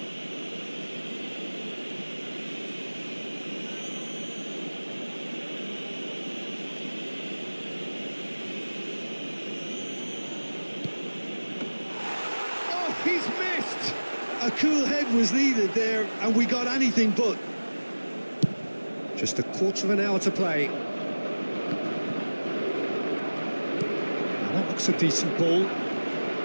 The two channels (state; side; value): inverted; both; correlation -1.00